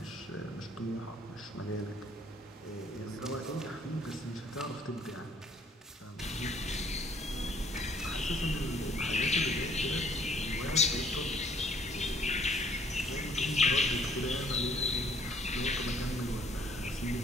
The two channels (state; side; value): normal; both; correlation 0.61